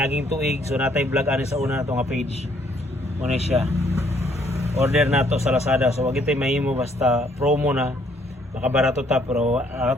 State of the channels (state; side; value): normal; both; correlation 0.66